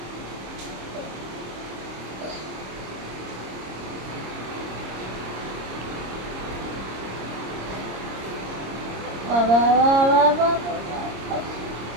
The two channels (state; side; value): late; left; 26 ms